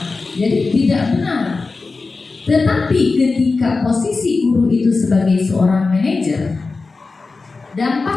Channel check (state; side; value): quieter; right; 4.0 dB